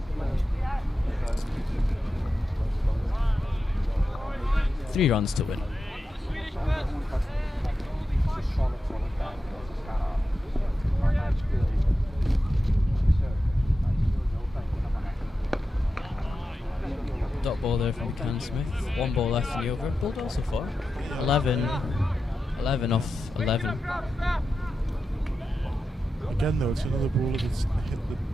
Three runs to win. dot ball there from Can Smith. 1 ball left in the over. Bowled well so far. 11 off 11. Again though, it's another bowler that's hit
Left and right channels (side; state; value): both; normal; correlation 0.90